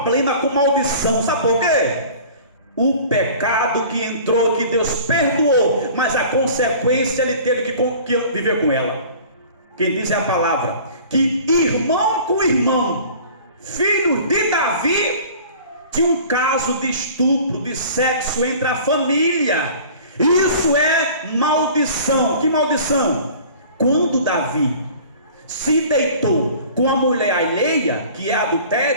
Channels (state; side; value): inverted; both; correlation -0.45